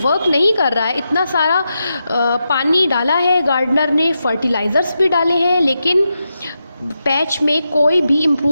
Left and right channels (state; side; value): inverted; both; correlation -0.87